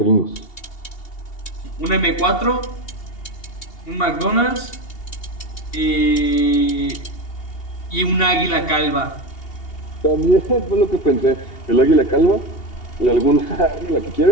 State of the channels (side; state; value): right; late; 2.8 ms